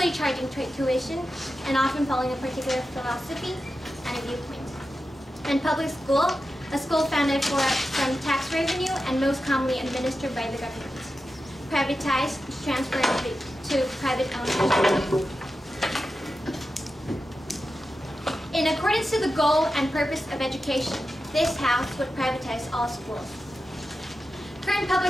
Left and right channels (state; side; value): normal; both; correlation 0.91